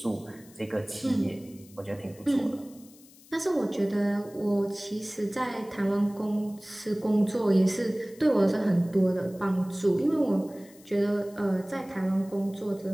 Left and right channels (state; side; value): noise; left; hiss, 24 dB below the sound